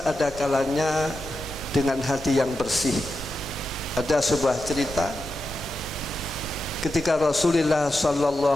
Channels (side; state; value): both; normal; correlation 0.89